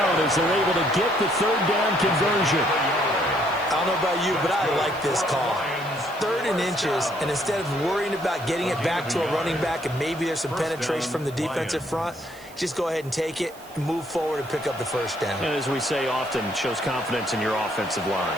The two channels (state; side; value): noise; right; hiss, 22 dB below the sound